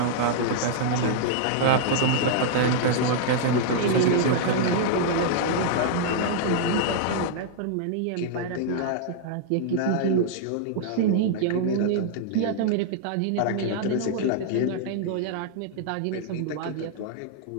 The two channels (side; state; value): both; different; correlation -0.01